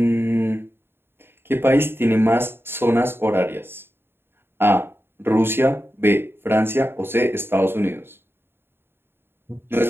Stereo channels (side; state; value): left; late; 0.11 ms